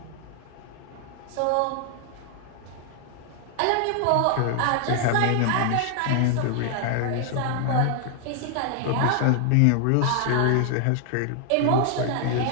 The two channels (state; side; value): different; both; correlation 0.00